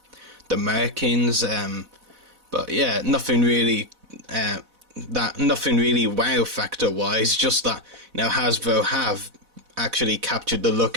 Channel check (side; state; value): left; late; 4.0 ms